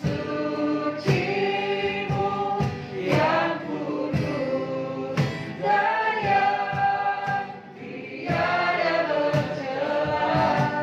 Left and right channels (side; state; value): both; identical; correlation 1.00